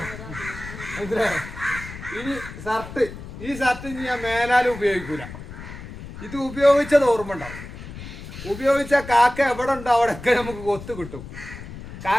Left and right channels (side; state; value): left; noise; rumble, 12 dB below the sound